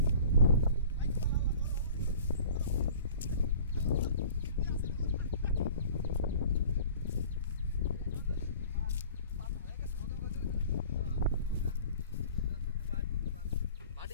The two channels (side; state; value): both; inverted; correlation -0.45